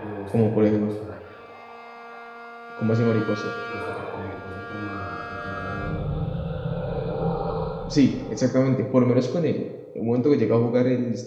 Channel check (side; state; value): both; identical; correlation 1.00